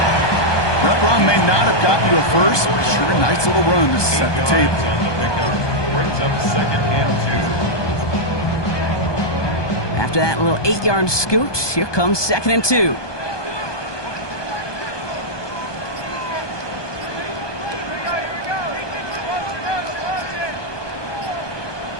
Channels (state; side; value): late; right; 1.2 ms